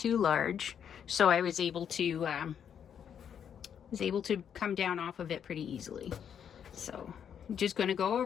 large, so I was able to come down off of it pretty easily. So I'm just going to go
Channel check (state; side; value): quieter; right; 8.3 dB